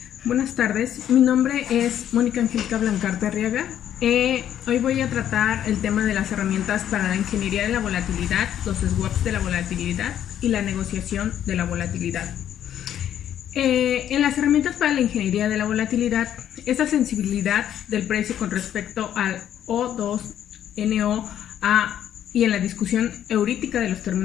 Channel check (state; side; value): quieter; right; 10.5 dB